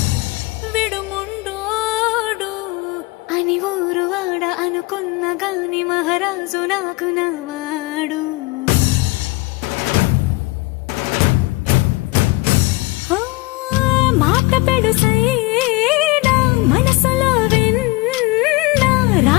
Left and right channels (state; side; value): quieter; right; 21.9 dB